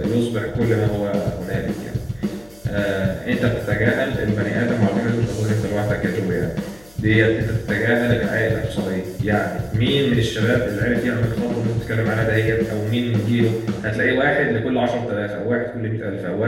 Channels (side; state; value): left; noise; hum, 27 dB below the sound